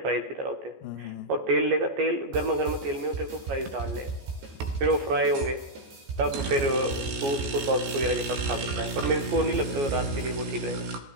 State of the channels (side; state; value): left; late; 15 ms